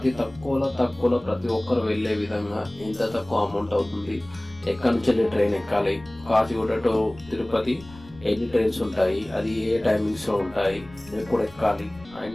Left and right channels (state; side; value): noise; left; rumble, 21 dB below the sound